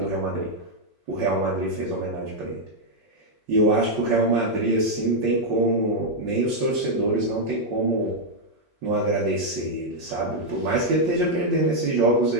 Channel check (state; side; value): normal; both; correlation -0.02